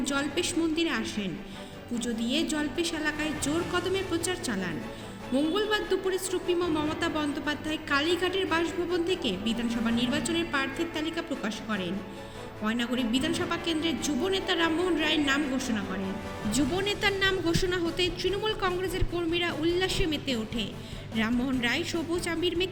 জল্পেশ মন্দিরে আসেন। পুজো দিয়ে জল্পেশ এলাকায় জোর কদমে প্রচার চালান। মঙ্গলবার দুপুরে সুপ্রিমো মমতা বন্দ্যোপাধ্যায় কালীঘাটের বাসভবন থেকে বিধানসভা নির্বাচনের প্রার্থীর তালিকা প্রকাশ করেন। ময়নাগুড়ি বিধানসভা কেন্দ্রের যুব নেতা রামমোহন রায়ের নাম ঘোষণা করেন। যুব নেতার নাম ঘোষণা হতে তৃণমূল কংগ্রেসের কর্মীরা উল্লাসে মেতে ওঠে। রামমোহন রায় সবুজ আবির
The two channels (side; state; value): both; identical; correlation 1.00